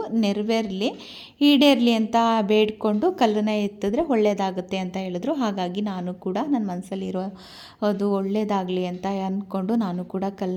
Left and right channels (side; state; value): both; identical; correlation 1.00